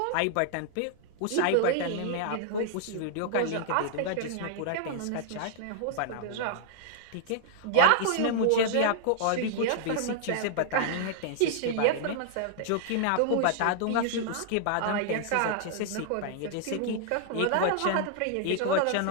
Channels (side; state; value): both; different; correlation -0.01